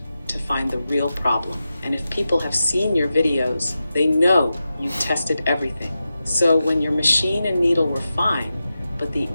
to find the real problem. And if people have seen your videos, they know you tested everything. So when your machine and needle were fine, but the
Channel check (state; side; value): inverted; both; correlation -0.91